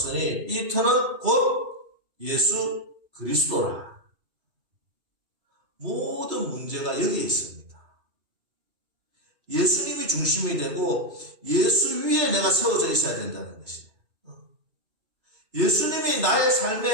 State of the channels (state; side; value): late; left; 2.3 ms